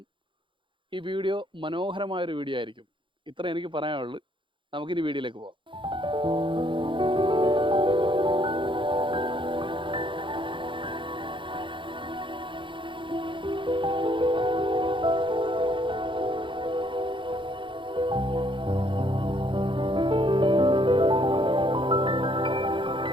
ഈ വീഡിയോ മനോഹരമായൊരു വീഡിയോ ആയിരിക്കും. ഇത്ര എനിക്ക് പറയാനുള്ളൂ. നമുക്കിനി വീഡിയോയിലേക്ക് പോകാം.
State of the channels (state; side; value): late; left; 0.24 ms